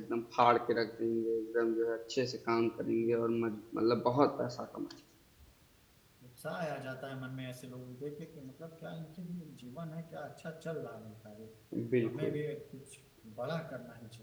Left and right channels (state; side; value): identical; both; correlation 1.00